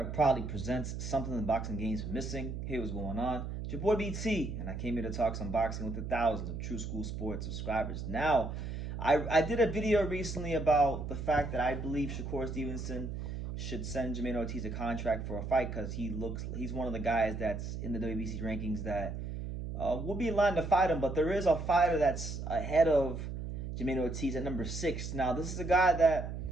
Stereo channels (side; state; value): right; noise; hum, 6 dB below the sound